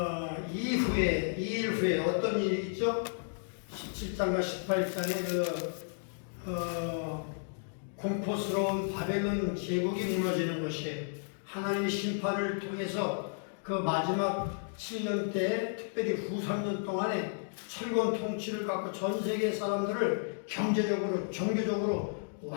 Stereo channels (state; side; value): silent; right; digital silence